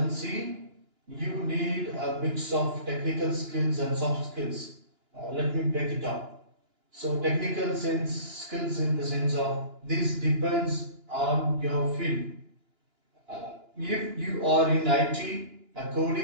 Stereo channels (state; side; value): late; left; 2.9 ms